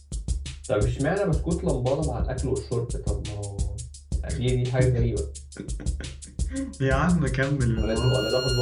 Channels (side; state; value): both; identical; correlation 1.00